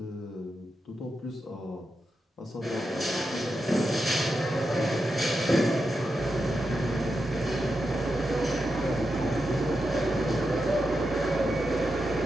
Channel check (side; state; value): both; normal; correlation 0.87